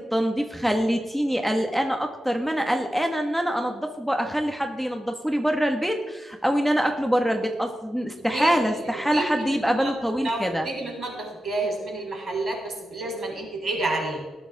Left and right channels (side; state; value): both; normal; correlation 0.92